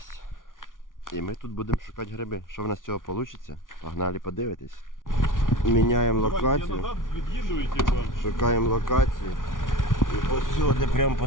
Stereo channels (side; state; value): right; late; 0.89 ms